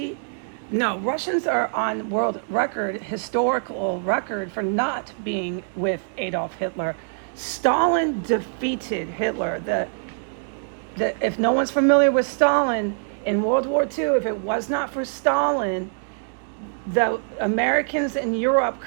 No, Russians are on world record, historical record, for not being with Adolf Hitler. Stalin defeated Hitler. If no one's familiar with Stalin in World War II, if it was not for Stalin, the Americans in Europe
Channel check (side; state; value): left; silent; digital silence